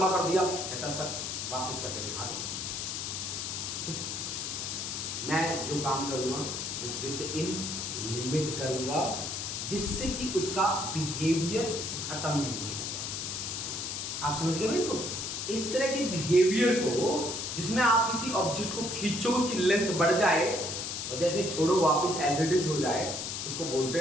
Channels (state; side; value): noise; left; hiss, 4 dB below the sound